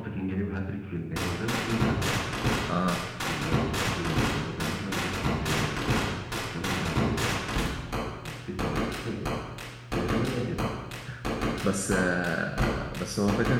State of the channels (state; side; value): identical; both; correlation 1.00